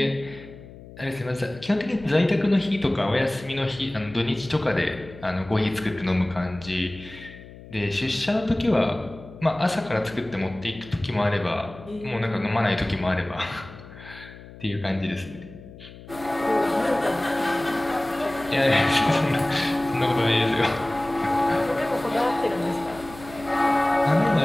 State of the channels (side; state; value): left; noise; hum, 18 dB below the sound